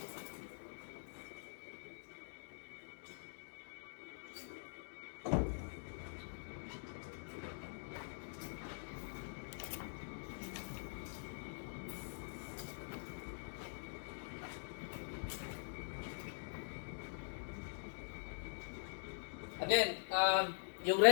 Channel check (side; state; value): right; silent; digital silence